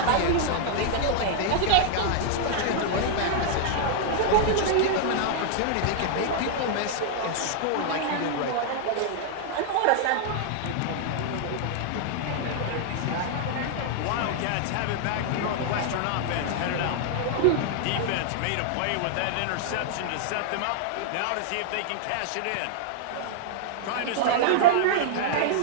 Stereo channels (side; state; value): both; different; correlation 0.00